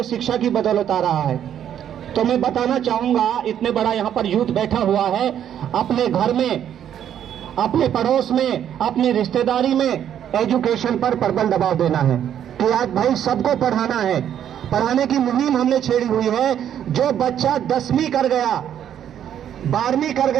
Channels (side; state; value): left; quieter; 9.9 dB